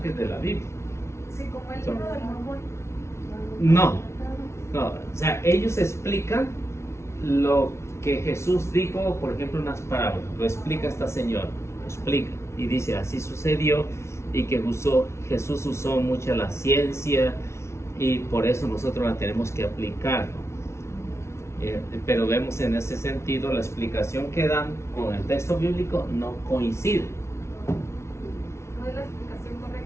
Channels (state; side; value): late; right; 0.13 ms